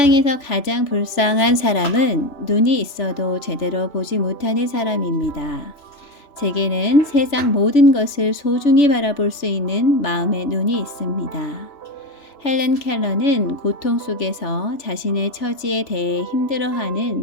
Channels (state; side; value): late; right; 3.0 ms